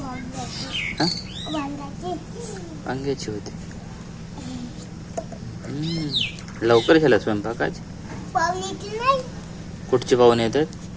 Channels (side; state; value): both; identical; correlation 1.00